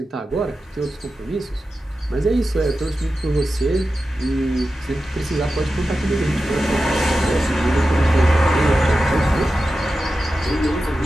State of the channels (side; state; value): both; normal; correlation 0.92